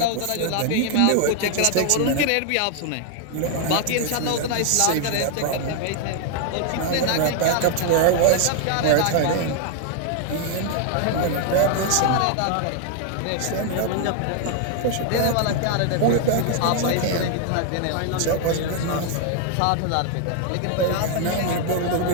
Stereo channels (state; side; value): different; both; correlation 0.00